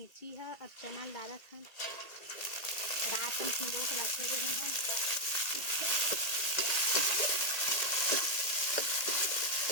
है। अब चैनल डाला था रात में सिंदूर को रखे रहे हैं।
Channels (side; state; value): right; late; 1.8 ms